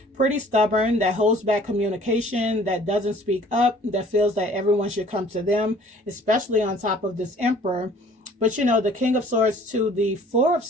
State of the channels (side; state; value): both; normal; correlation 0.53